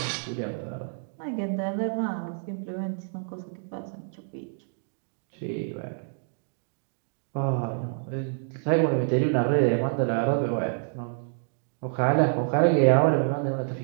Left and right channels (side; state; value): left; silent; digital silence